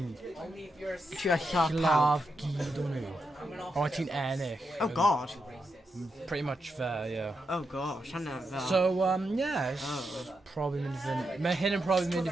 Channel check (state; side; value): normal; both; correlation 0.84